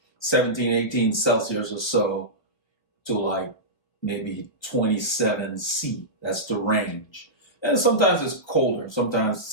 17, 18 Celsius or so to like maybe 27 C. That's the range. And sometimes it's colder, sometimes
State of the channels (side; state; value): right; late; 1.5 ms